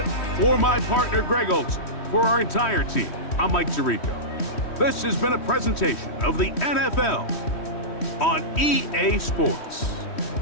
for my partner, Greg Olson. For our entire team, I'm Mike Tirico. This has been a presentation of the NFL on EA Sports.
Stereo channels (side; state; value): right; late; 3.1 ms